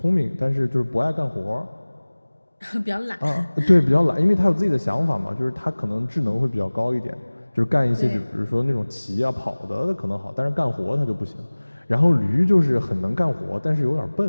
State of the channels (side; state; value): both; inverted; correlation -1.00